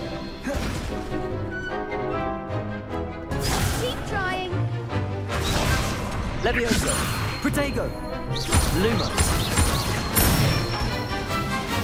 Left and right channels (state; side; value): identical; both; correlation 1.00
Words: Keep trying! Levioso. Protego. Luma.